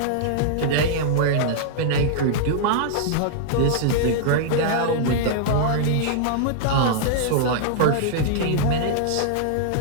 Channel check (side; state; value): both; different; correlation -0.01